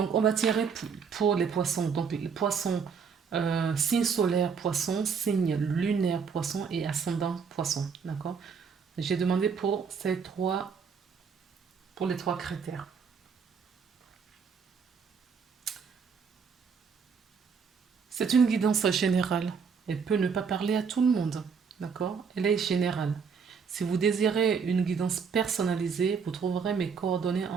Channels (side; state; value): left; quieter; 6.0 dB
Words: on va tirer pour les poissons. Donc les poissons, signe solaire poisson, signe lunaire poisson et ascendant poisson. D'accord? J'ai demandé pour les trois critères. C'est une guidance générale. Elle peut ne pas parler à tout le monde. D'accord? Elle est générale. Si vous désirez une guidance personnalisée, vous trouverez mes coordonnées